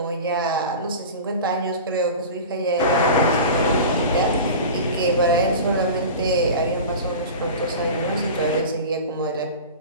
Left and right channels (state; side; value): inverted; both; correlation -0.33